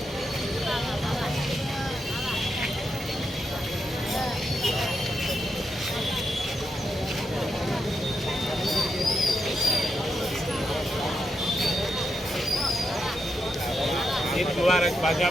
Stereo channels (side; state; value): both; normal; correlation 0.84